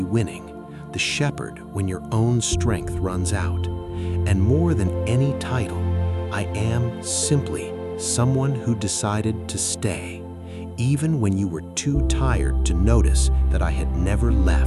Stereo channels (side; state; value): both; identical; correlation 1.00